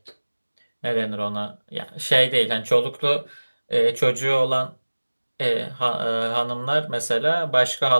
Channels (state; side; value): inverted; both; correlation -1.00